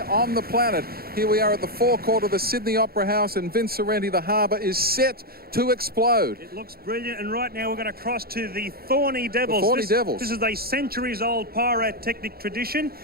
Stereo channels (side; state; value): left; late; 0.44 ms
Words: the planet. Here we are at the forecourt of the Sydney Opera House, and Vince Sorrenti, the harbour, is set to explode. It looks brilliant, and right now we're going to cross to the Thorny Devils. The Thorny Devils. This is a centuries-old pyrotechnic tradition.